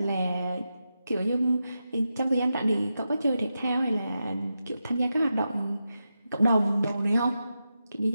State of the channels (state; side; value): inverted; both; correlation -0.89